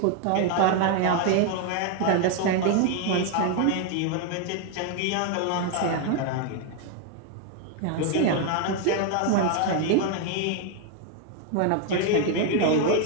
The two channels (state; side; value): different; both; correlation 0.01